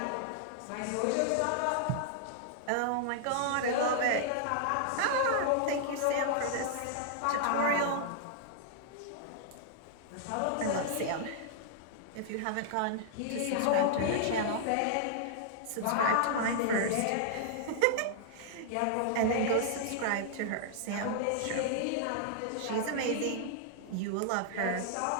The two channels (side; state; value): both; different; correlation -0.01